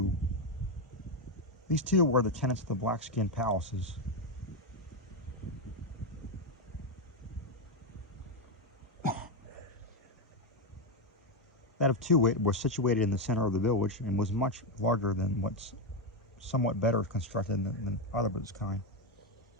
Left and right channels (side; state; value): both; normal; correlation 0.07